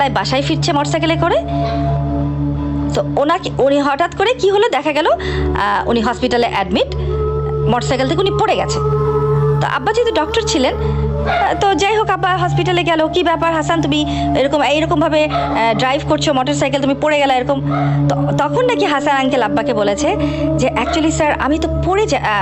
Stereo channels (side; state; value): both; identical; correlation 1.00